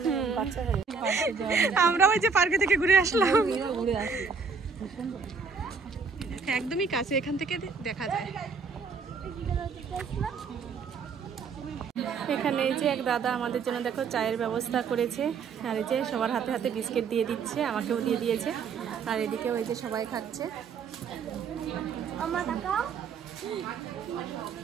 বাচ্চা আমরা ওই যে পার্কে থেকে ঘুরে আসলাম। একদমই কাছে, এখান থেকে দেখা যায়। এখানে এই যে এক দাদা আমাদের জন্য দেখো চায়ের ব্যবস্থা করেছে, আর এই যে সবার হাতে হাতে বিস্কিট দিয়ে দিচ্ছে, আমাকেও দিয়ে দিয়েছে, আর এদিকেও এই যে সবাই খাচ্ছে।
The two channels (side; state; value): left; quieter; 5.4 dB